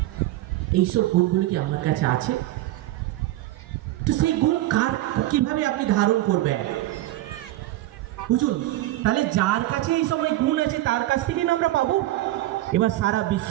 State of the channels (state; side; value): quieter; left; 15.9 dB